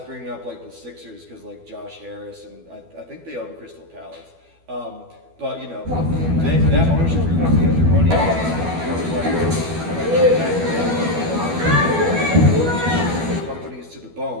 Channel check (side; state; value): left; late; 12 ms